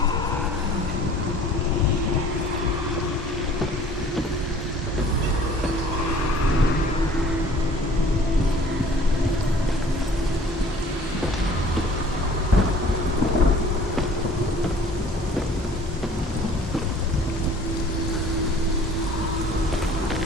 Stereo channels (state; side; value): normal; both; correlation 0.50